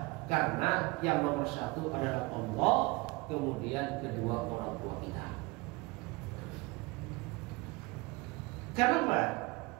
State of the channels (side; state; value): left; quieter; 24.2 dB